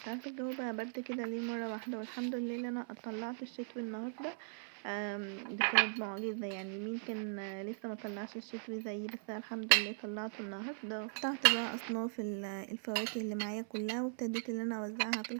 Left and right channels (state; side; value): silent; left; 52 dB below the other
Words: عارفه الجو بقى برد كده ليه مره واحده. والحمد لله ان انا طلعت الشتوي النهارده. دي كانت معجزة، يعني مين كان لسه ما طلعش الشتوي زيي؟ بس أنا الحمد لله طلعته النهارده. قطعت بقى اصناف الفواكه اللي معايا كلها، وابتديت ان انا اوزعها في